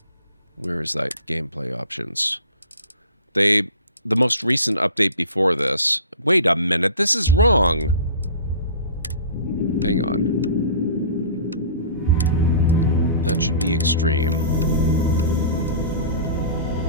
where is that gameplay options? The most recent update before this. Wait a minute, this is wrong. Hang on. That should be extreme.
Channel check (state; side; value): inverted; both; correlation -0.41